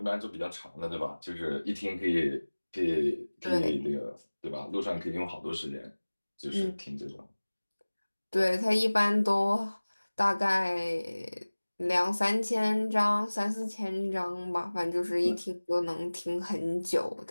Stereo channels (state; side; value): inverted; both; correlation -1.00